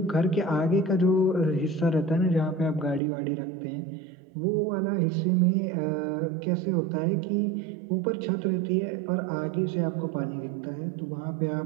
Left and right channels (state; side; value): drops out; left; at 3.0 s